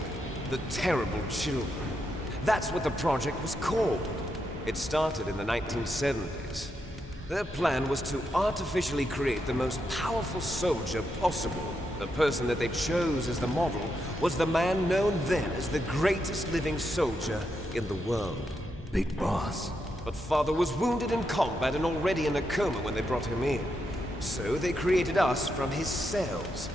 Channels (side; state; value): both; normal; correlation 0.83